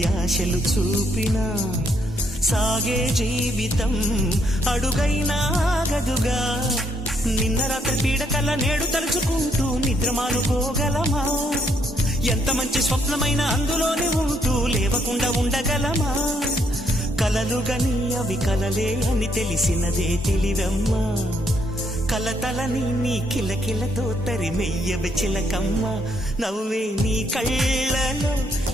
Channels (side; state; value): both; normal; correlation 0.72